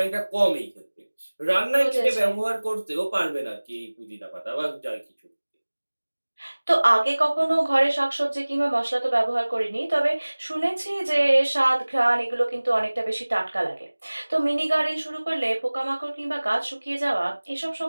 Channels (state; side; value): inverted; both; correlation -1.00